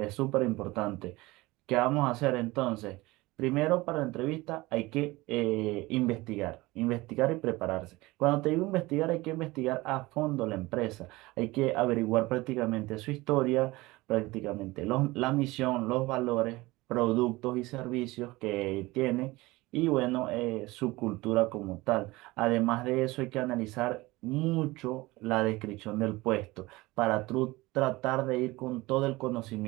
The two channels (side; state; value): left; quieter; 20.7 dB